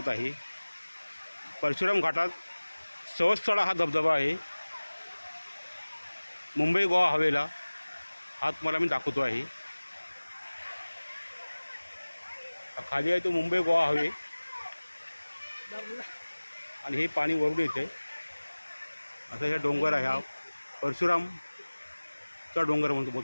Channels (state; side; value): inverted; both; correlation -1.00